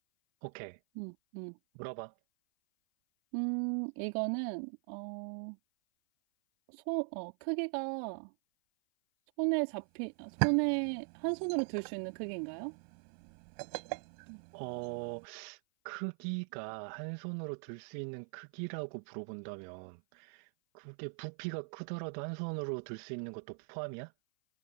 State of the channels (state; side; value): silent; left; 51 dB below the other